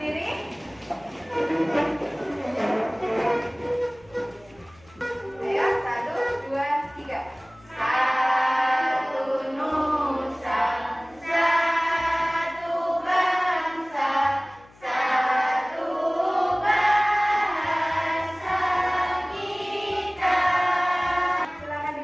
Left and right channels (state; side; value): noise; left; hum, 27 dB below the sound